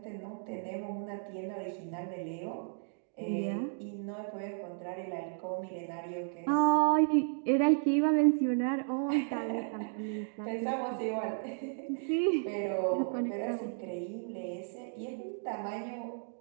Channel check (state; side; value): silent; left; digital silence